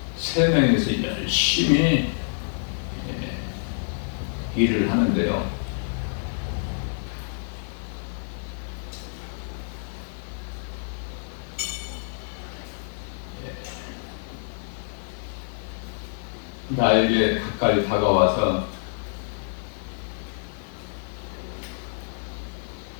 세 명이서 열심히 일을 하는데요. 나에게 가까이 다가와서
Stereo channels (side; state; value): right; silent; digital silence